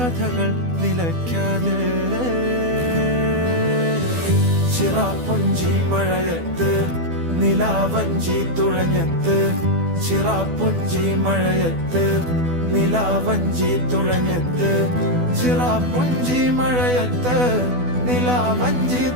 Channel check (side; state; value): left; late; 12 ms